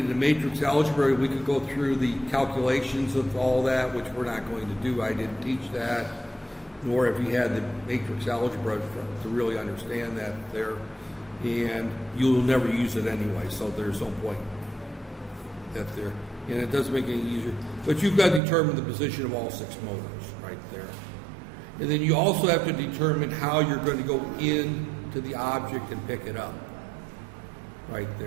matrix algebra, we could go through the calculations of all that, which we're not going to do. I didn't teach that, nor if you had the matrix algebra to really understand that there. And you'll never use it anyway, so there's no point that there. And it doesn't make it any easier. But you've got to determine the position of all 6 motors right there. And then you also have to determine how you're going to go into the object and pick it up right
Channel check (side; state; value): left; drops out; at 18.4 s